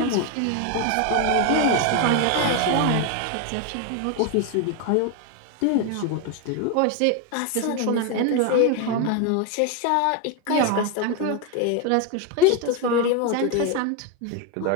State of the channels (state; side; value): different; both; correlation 0.01